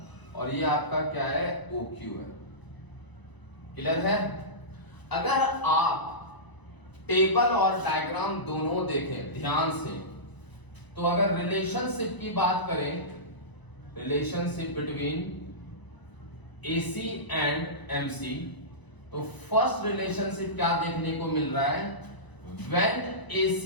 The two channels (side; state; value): right; late; 1.0 ms